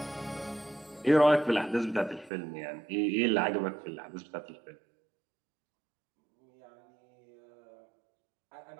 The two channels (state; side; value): drops out; left; at 2.3 s